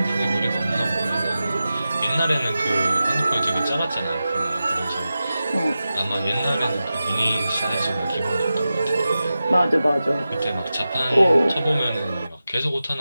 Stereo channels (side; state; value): both; inverted; correlation -0.93